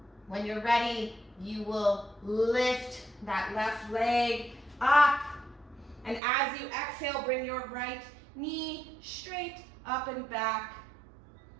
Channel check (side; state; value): left; drops out; at 6.2 s